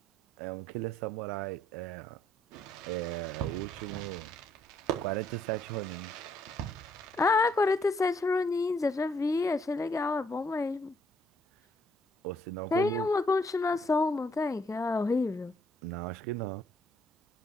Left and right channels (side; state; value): both; normal; correlation 0.69